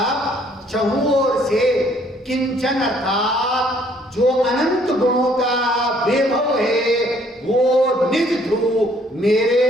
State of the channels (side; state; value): both; normal; correlation 0.63